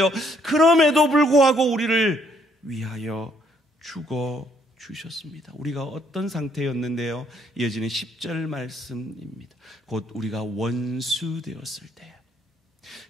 그럼에도 불구하고 우리를 위하여 죽어 주셨습니다. 우리가 어떤 상태였는데요? 이어지는 10절 말씀입니다. 곧 우리가 원수 되었을 때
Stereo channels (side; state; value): both; normal; correlation 0.68